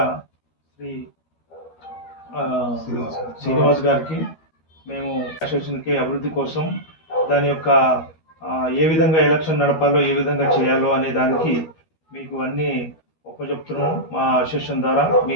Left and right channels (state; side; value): late; right; 13 ms